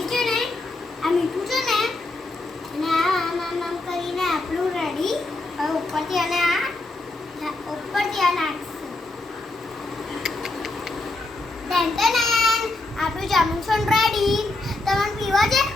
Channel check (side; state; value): right; quieter; 3.0 dB